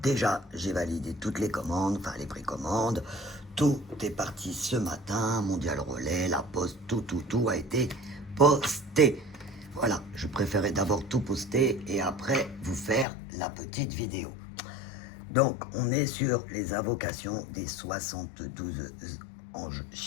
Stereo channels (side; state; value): right; drops out; at 13.1 s